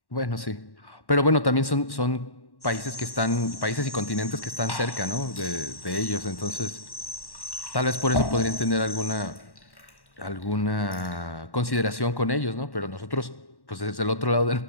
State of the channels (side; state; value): right; late; 1.1 ms